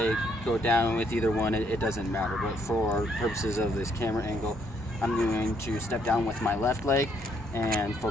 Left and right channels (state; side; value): normal; both; correlation 0.70